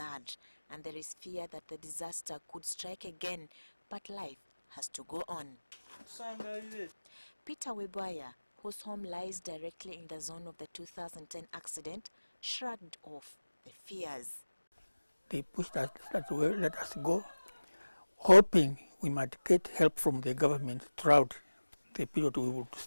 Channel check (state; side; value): inverted; both; correlation -1.00